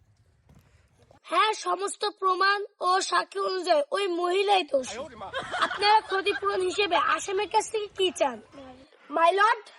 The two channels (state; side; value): identical; both; correlation 1.00